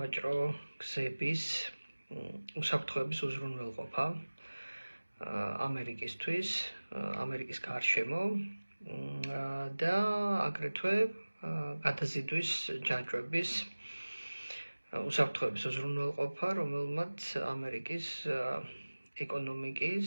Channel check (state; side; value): inverted; both; correlation -1.00